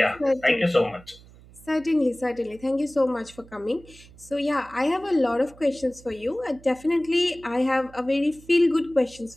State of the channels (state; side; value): noise; right; hum, 23 dB below the sound